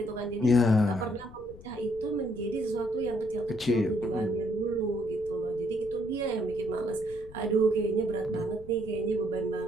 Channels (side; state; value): left; noise; rumble, 18 dB below the sound